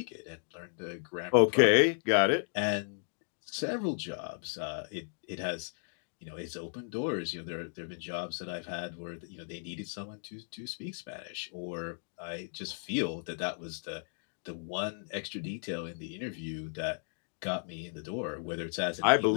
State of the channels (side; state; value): right; silent; digital silence